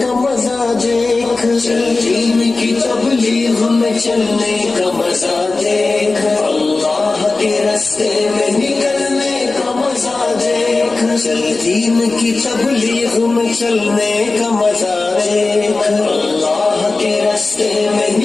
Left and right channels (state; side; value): quieter; right; 3.5 dB